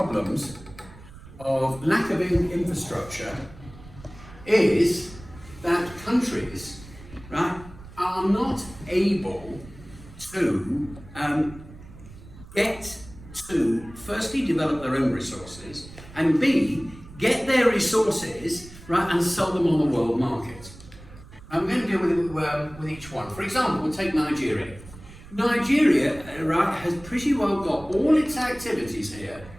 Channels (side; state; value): right; noise; rumble, 18 dB below the sound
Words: lack of infrastructure is that countries, right, are not able to get to firstly develop their own resources, and B, get their resources, right, and sell them on the world market. I'm going to deal with each one. For example, we'll take Nigeria. Nigeria, right, has pretty well got all its activities here